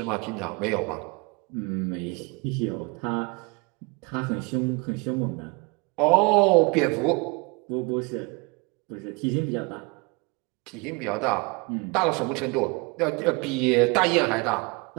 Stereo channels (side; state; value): left; quieter; 28.5 dB